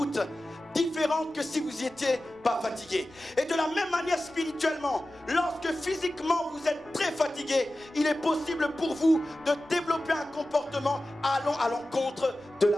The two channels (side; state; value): left; noise; rumble, 29 dB below the sound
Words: différente que si vous n'étiez pas fatigué. Et de la même manière spirituellement, lorsque physiquement vous êtes très fatigué, il est possible pour vous de développer un comportement allant à l'encontre de